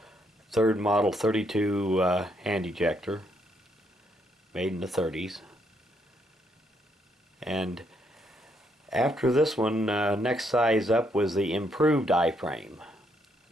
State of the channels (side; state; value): both; normal; correlation 0.74